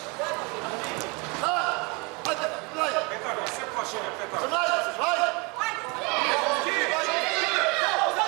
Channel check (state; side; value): quieter; left; 29.2 dB